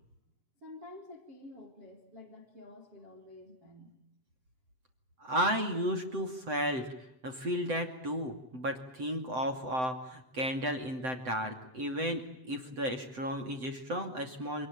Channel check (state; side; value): late; left; 7.8 ms